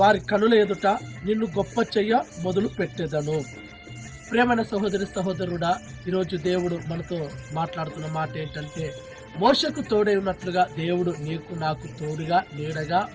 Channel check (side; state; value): both; identical; correlation 1.00